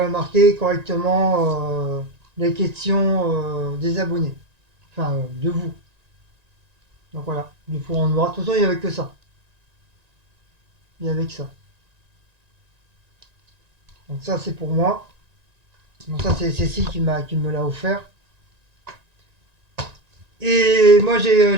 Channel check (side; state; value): left; late; 1.9 ms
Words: marquer correctement les questions des abonnés. Enfin, de vous. Donc voilà, du coup on verra. De toute façon, il n'y avait que ça. Il n'y avait que ça. Donc ça c'est pour moi. Donc ça c'est Cécile qui me l'a offert. Et moi